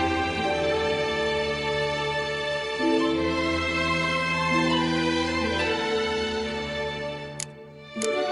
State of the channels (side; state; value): both; identical; correlation 1.00